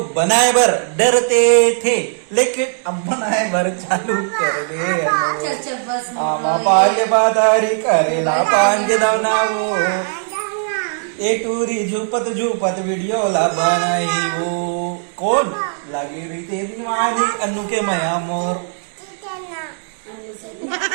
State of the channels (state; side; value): silent; left; digital silence